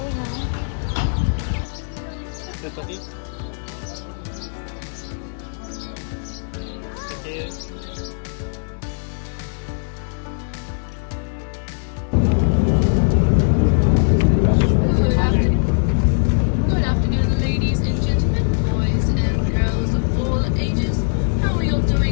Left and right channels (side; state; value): right; silent; digital silence